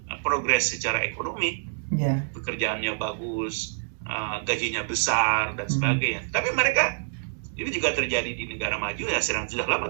progres secara ekonomi, pekerjaannya bagus, gajinya besar dan sebagainya. Tapi mereka, ini juga terjadi di negara maju ya, sudah lama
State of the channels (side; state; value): left; silent; digital silence